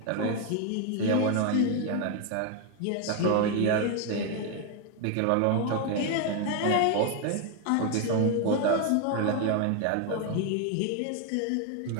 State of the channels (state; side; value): different; both; correlation 0.01